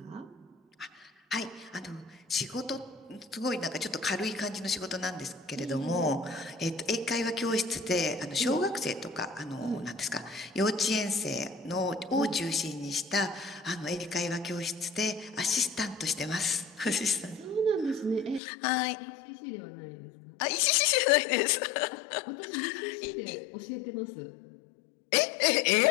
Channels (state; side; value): drops out; right; at 18.4 s